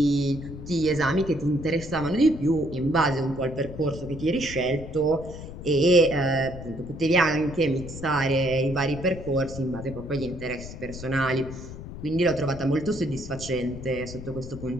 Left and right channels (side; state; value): left; noise; rumble, 11 dB below the sound